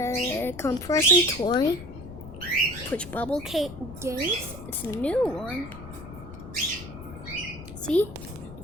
compression toy push bubble games. It's a new one. See, you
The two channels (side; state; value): left; noise; rumble, 13 dB below the sound